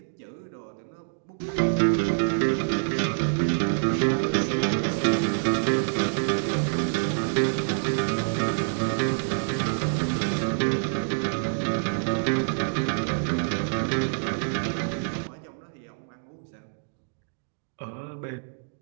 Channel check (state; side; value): silent; left; digital silence